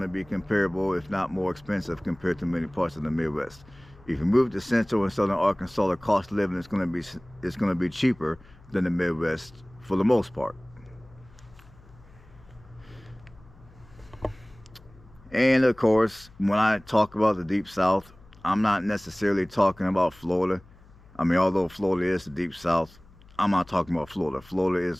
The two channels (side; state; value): left; noise; hum, 25 dB below the sound